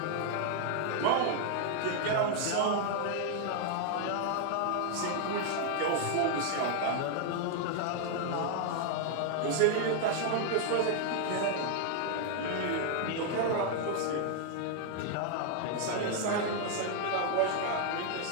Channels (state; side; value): different; both; correlation 0.00